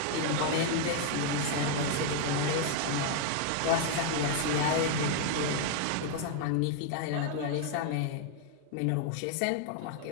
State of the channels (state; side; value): different; both; correlation 0.00